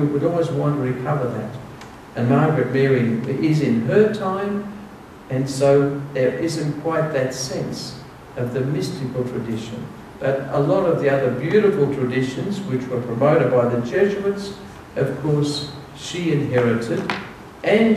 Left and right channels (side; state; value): both; identical; correlation 1.00